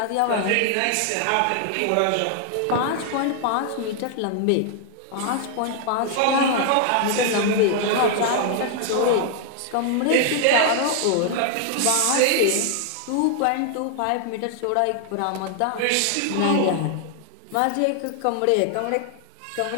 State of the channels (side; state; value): both; different; correlation 0.00